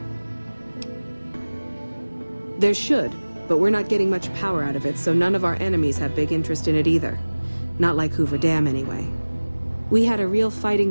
There should, but we're not getting much power out of it, so none of our enemies have big interest in it either. Not like Hoover Dam, anyway. We had a real fighting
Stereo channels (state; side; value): inverted; both; correlation -1.00